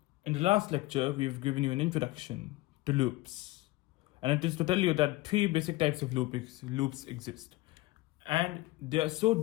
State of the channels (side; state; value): right; quieter; 19.4 dB